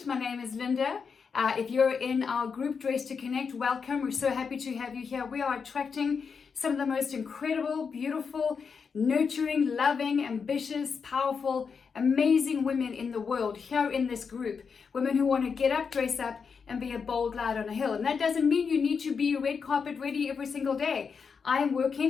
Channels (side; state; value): right; quieter; 5.8 dB